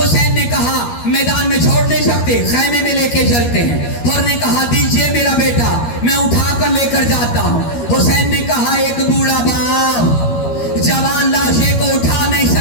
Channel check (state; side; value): late; right; 13 ms